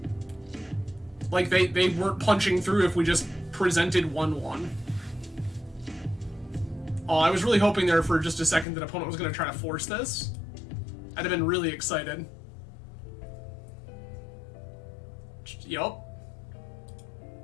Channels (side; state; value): right; drops out; at 8.7 s